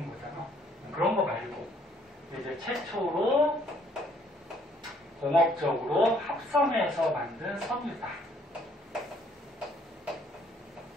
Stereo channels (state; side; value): normal; both; correlation 0.64